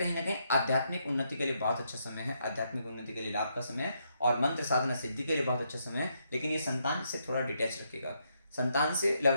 ना कहीं आध्यात्मिक उन्नति के लिए बहुत अच्छा समय है, आध्यात्मिक उन्नति के लिए लाभ का समय है, और मंत्र साधना सिद्धि के लिए बहुत अच्छा समय है। लेकिन ये संतान से थोड़ा डिटैच रखेगा, संतान से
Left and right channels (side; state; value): both; inverted; correlation -0.77